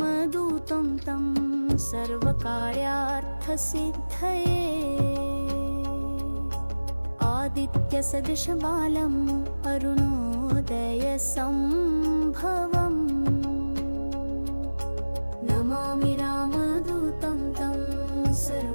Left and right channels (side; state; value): both; inverted; correlation -1.00